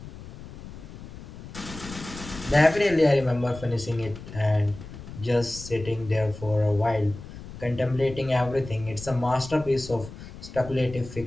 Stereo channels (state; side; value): noise; left; rumble, 14 dB below the sound